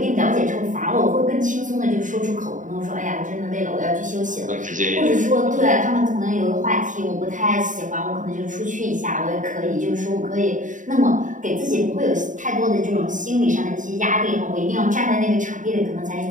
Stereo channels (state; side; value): late; left; 0.37 ms